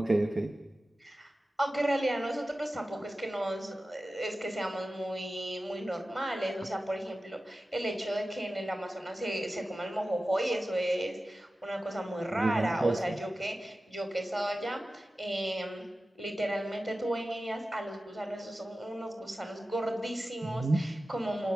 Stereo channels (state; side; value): normal; both; correlation 0.95